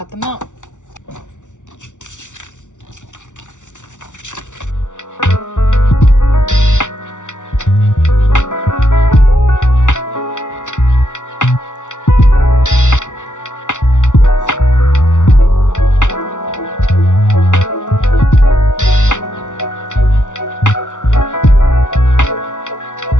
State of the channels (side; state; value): right; late; 0.86 ms